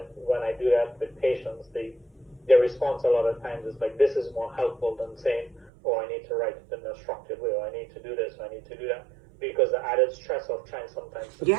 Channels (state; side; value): drops out; left; at 5.7 s